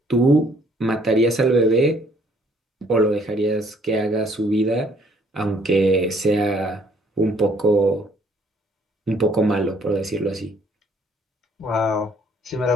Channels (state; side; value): normal; both; correlation 0.62